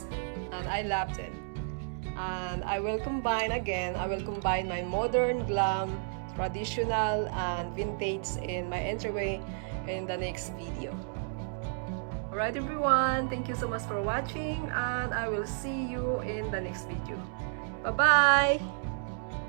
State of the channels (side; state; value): left; silent; digital silence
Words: and I love them. And I will combine my modern, glam, traditional, and vintage in my entryway in the next video. Alright everyone, thank you so much for watching, and I will see you in the next video. Bye bye!